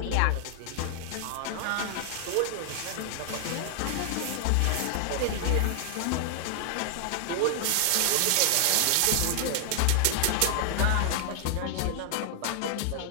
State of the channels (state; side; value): different; both; correlation 0.00